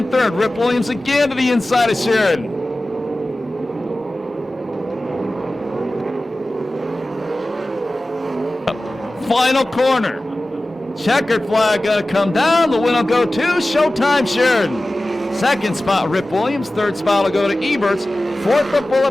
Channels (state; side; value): normal; both; correlation 0.96